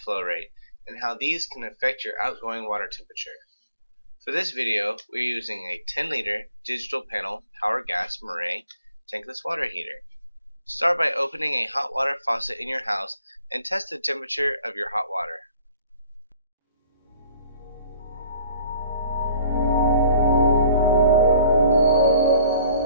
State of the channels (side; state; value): both; inverted; correlation -0.54